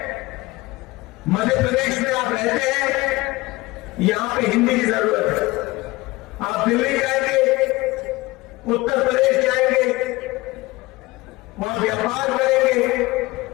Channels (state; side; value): quieter; right; 20.8 dB